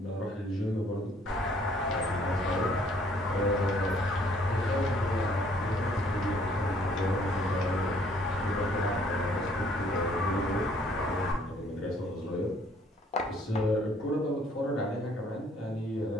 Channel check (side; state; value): both; normal; correlation 0.61